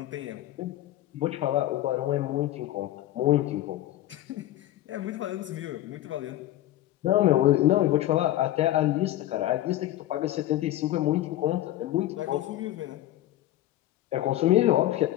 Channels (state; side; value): quieter; right; 14.3 dB